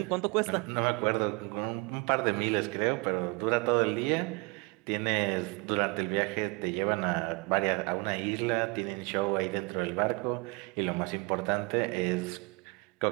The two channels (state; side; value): quieter; left; 29.1 dB